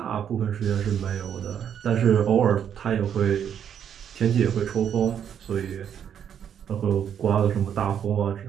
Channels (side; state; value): left; quieter; 8.7 dB